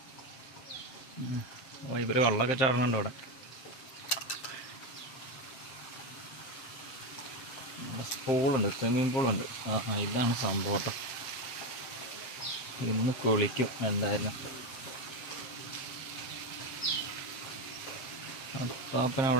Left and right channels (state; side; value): late; right; 7.5 ms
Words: ഇവർ വെള്ളമൊക്കെ ചാടുന്നുണ്ട് ഇവിടെ. പൂളുണ്ട്, സ്വിമ്മിങ് പൂളുണ്ട്. ഇതാണ് സംഭവം കേട്ടോ. ഇന്ന് കുളിക്കും എന്തായാലും. പാപ്പൻ